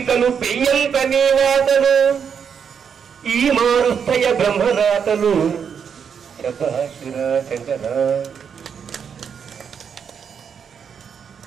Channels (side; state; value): left; quieter; 7.1 dB